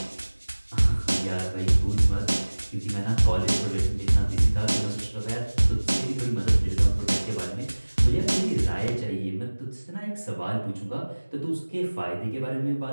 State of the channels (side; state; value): both; inverted; correlation -1.00